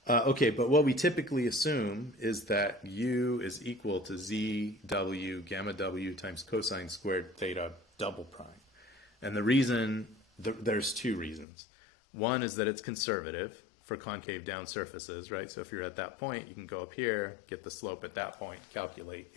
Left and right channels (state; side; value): drops out; right; at 11.5 s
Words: Okay, but what we typically assume is that U is equal to ZW gamma W times cosine squared theta double prime. And the reason, there's two reasons. One is that it's conservative for concave down surfaces, right? So if you're at that point, you can go up here, get the slope at that point, calculate